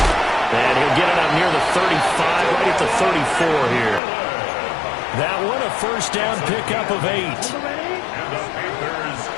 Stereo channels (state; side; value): drops out; right; at 4.0 s